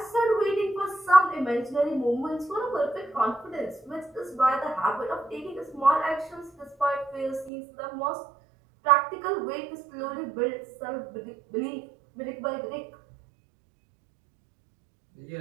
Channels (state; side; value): drops out; left; at 7.5 s